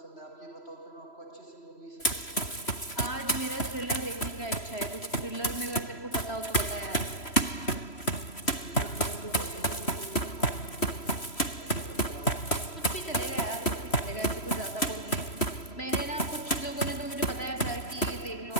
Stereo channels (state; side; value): late; right; 3.0 ms